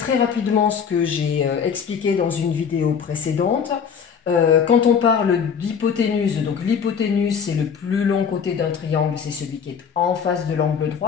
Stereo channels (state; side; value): quieter; right; 6.9 dB